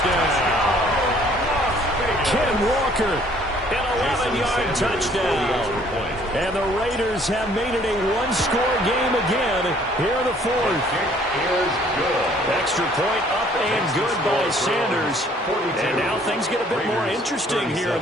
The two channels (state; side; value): normal; both; correlation 0.59